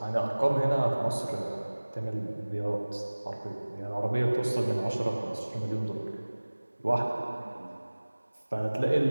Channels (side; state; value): both; inverted; correlation -1.00